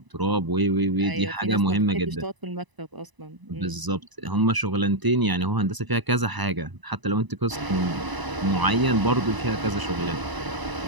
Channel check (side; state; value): left; late; 1.0 ms